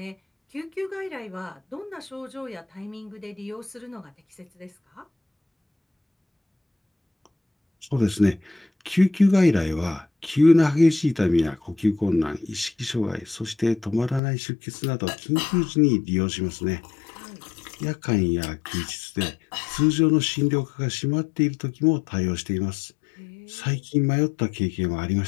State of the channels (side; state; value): right; drops out; at 14.2 s